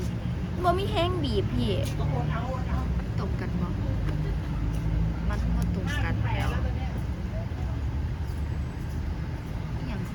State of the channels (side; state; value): both; identical; correlation 1.00